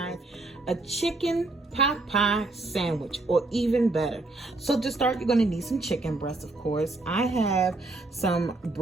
a chicken pot pie sandwich, or even better. So to start, you're going to need some chicken breast, of course. I have some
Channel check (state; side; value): quieter; left; 3.0 dB